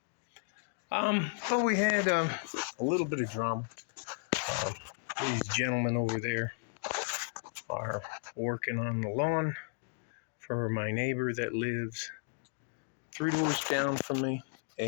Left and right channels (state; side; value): silent; right; digital silence